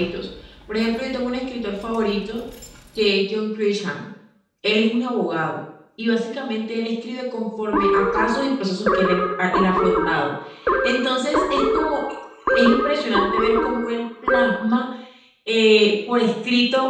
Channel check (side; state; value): both; identical; correlation 1.00